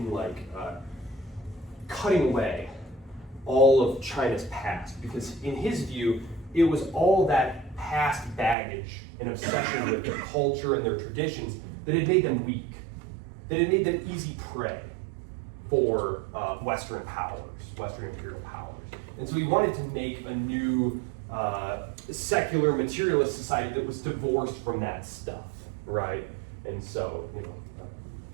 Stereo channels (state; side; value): drops out; left; at 8.6 s